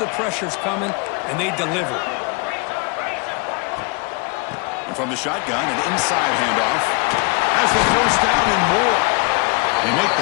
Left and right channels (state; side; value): quieter; right; 29.6 dB